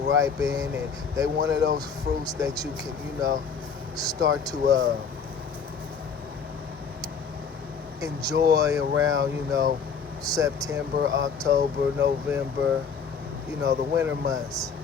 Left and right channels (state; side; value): quieter; right; 6.1 dB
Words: and they one of those fruits that you can, start to enjoy around, September, October, November, the winter months.